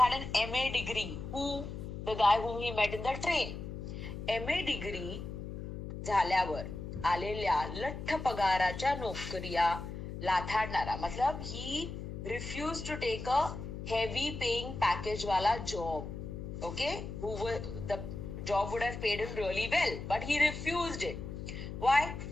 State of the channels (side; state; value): left; noise; hum, 8 dB below the sound